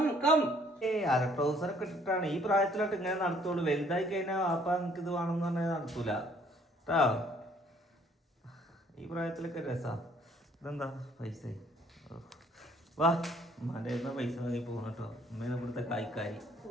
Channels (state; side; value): normal; both; correlation 0.61